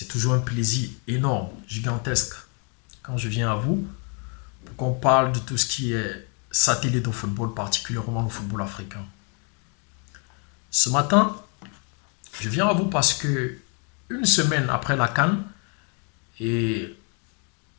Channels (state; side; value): quieter; right; 37.8 dB